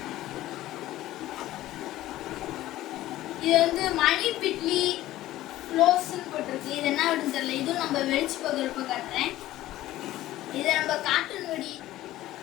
இது வந்து மணி பிட்லி க்ளோஸ்ன்னு போட்டிருக்கு. இது என்ன வெடின்னு தெரியல, இதுவும் நம்ம வெடிச்சு போகிறப்ப காட்டுறேன். இதை நம்ம கார்ட்டூன் வெடி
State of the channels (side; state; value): right; quieter; 15.2 dB